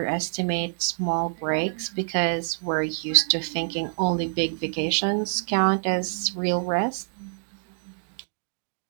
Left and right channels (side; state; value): left; silent; digital silence